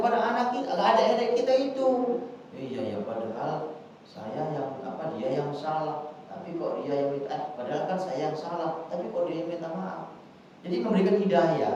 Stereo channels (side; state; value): both; identical; correlation 1.00